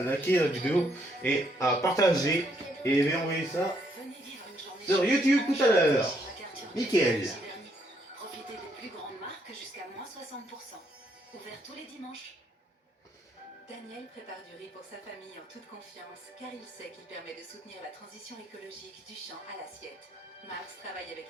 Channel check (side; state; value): both; normal; correlation 0.72